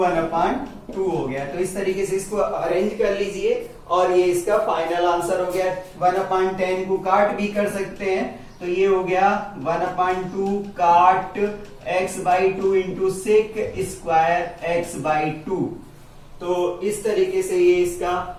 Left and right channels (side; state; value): both; identical; correlation 1.00